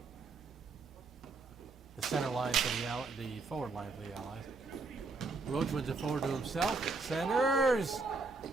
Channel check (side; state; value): left; quieter; 3.9 dB